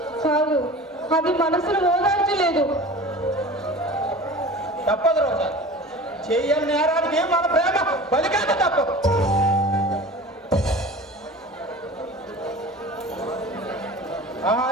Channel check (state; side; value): normal; both; correlation 0.38